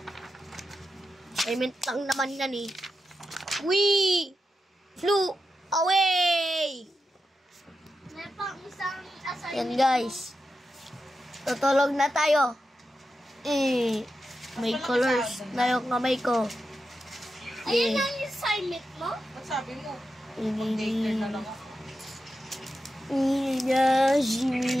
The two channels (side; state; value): both; normal; correlation 0.89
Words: Assignment lang naman yan eh. We flew away! May pang isang assignment. Yan guys. Tutulog na tayo. May colors na yung kamay ko. Ayun ang assignment mo? Ba't sabi mo? Ini. Daycare na lang ako.